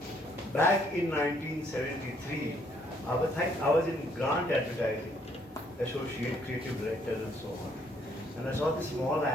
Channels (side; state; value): both; normal; correlation 0.67